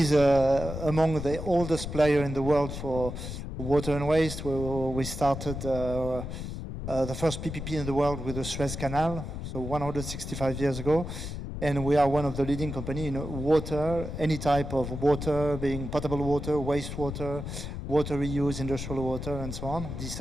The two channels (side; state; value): left; noise; rumble, 7 dB below the sound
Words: among the oldest player in the world for water and waste. We started the first PPP in the world with the Suez Canal, so 165 years ago. And we are one of the leading company in water, any type of water, being potable water, wastewater, water reuse, industrial water, and so on,